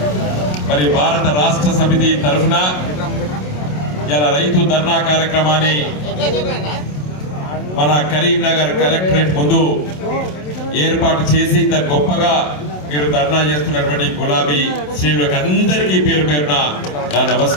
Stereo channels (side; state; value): right; late; 27 ms